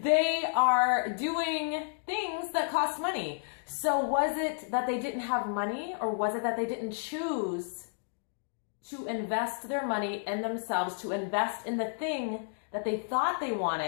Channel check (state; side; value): silent; right; digital silence